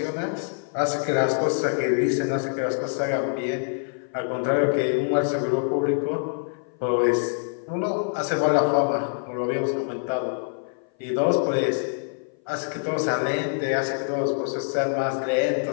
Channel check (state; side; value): silent; right; 57 dB below the other